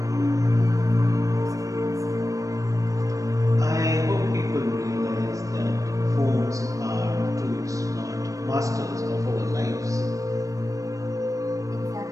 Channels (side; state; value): left; late; 0.16 ms